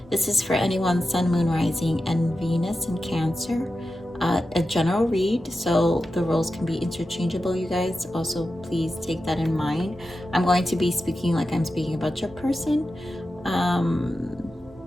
This is for anyone Sun, Moon, Rising, and Venus in Cancer. A general read, so the roles can be interchangeable, you guys. Also, please take that in mind. I'm going to be speaking like I'm speaking about your person.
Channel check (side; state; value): both; normal; correlation 0.91